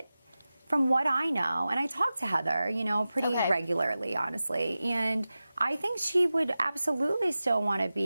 from what I know, and I talk to Heather, you know, pretty regularly, honestly, and I think she would absolutely still want to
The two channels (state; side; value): inverted; both; correlation -0.95